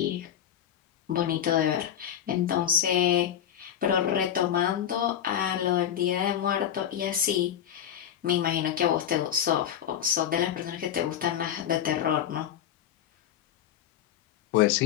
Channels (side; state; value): right; quieter; 9.9 dB